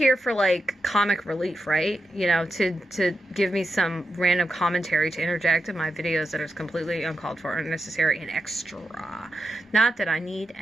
for like comic relief, right? You know, to give me some random commentary to interject in my videos that is completely uncalled for, unnecessary, and extra. Not that I need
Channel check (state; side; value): normal; both; correlation 0.88